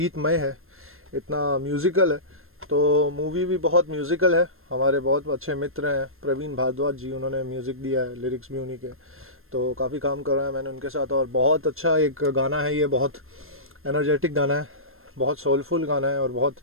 है इतना म्यूज़िकल है तो मूवी भी बहुत म्यूज़िकल है। हमारे बहुत अच्छे मित्र हैं प्रवीण भारद्वाज जी उन्होंने म्यूज़िक दिया है लिरिक्स भी उन्हीं के तो काफ़ी काम कर रहा है मैंने उनके साथ और बहुत अच्छा एक गाना है ये बहुत एनर्जेटिक गाना है बहुत सोलफुल गाना है और बहुत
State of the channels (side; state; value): left; late; 0.61 ms